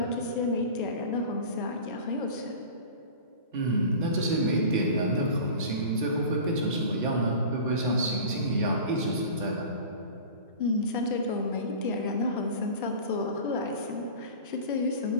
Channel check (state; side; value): inverted; both; correlation -0.37